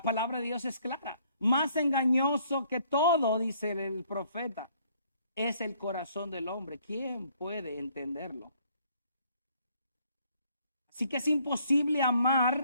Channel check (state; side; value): inverted; both; correlation -0.64